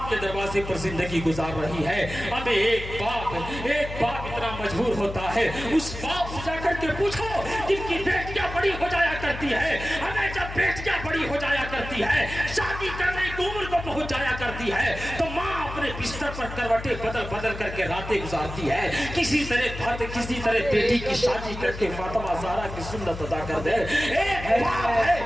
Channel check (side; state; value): left; noise; hum, 9 dB below the sound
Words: के दरवाजे पर जिंदगी गुजार रही है। हमें एक बाप इतना मजबूर होता है, उस बाप से जाकर के पूछो जिनकी बेटियां बड़ी हो जाया करती है। हमें जब बेटियां बड़ी हो जाया करती है, शादी करने की उम्र को पहुंच जाया करती है, तो माँ अपने बिस्तर पर करवटें बदल बदल करके रातें गुजारती है। किसी तरह बेटी की शादी करके फातिमा ज़हरा की सुन्नत अदा कर दे।